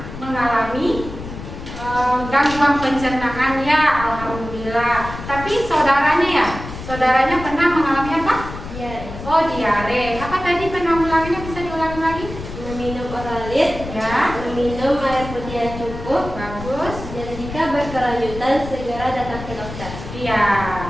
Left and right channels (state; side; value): noise; left; rumble, 10 dB below the sound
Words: mengalami gangguan pencernaan ya, alhamdulillah. Tapi saudaranya pernah mengalami apa? Diare. Oh, diare. Apa tadi penanggulangannya, bisa diulangi lagi? Meminum oralit, Ya, meminum air putih yang cukup, bagus. dan jika berkelanjutan segera datang ke dokter. Iya.